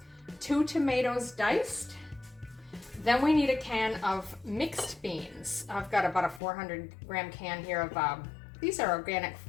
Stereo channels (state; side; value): drops out; right; at 6.4 s